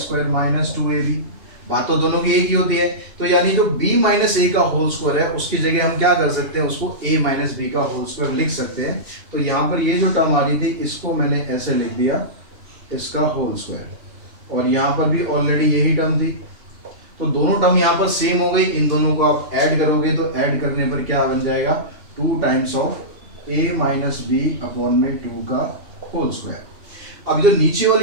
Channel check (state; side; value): late; left; 2.8 ms